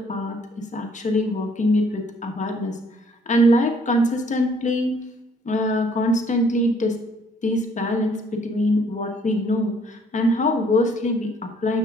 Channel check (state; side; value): normal; both; correlation 0.62